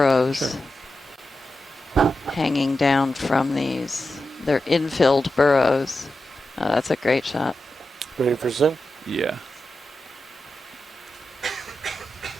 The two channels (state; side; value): normal; both; correlation 0.90